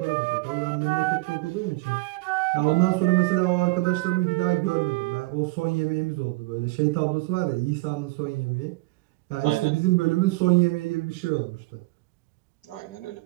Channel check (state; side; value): quieter; left; 22.5 dB